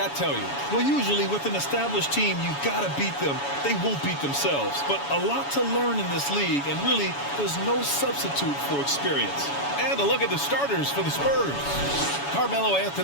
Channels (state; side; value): late; right; 7.1 ms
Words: tell you? Well, usually with an established team, you've got to beat them. They won't beat themselves. But a lot to learn in this league, and really, there's no substitute for experience. And a look at the starters for the Spurs. Carmelo